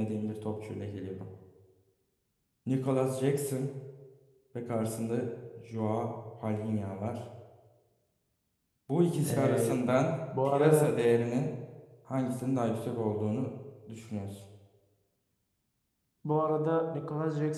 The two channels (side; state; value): both; identical; correlation 1.00